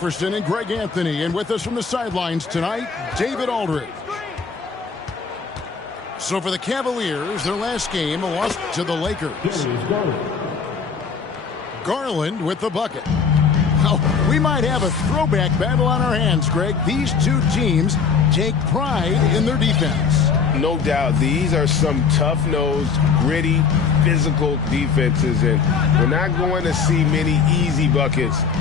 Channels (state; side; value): quieter; right; 5.7 dB